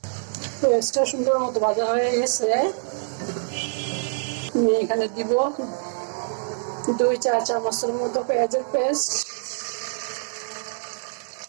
পেঁয়াজটা সুন্দর মতো ভাজা হয়ে গেছে। আমি এখানে দিব 2 চা চামচের মতো পেঁয়াজের পেস্ট,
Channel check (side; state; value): left; silent; digital silence